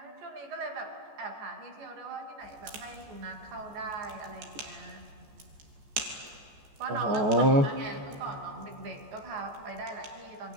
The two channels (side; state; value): left; late; 14 ms